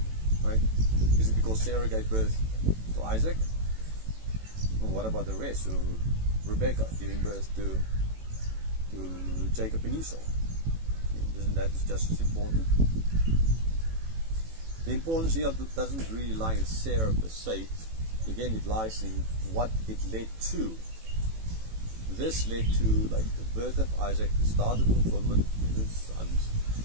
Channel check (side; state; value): left; late; 18 ms